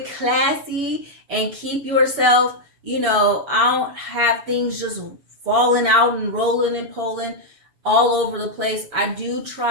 classy and keep yourself, I don't have things just falling out and rolling and pulling all over the place. I do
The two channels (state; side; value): late; left; 7.0 ms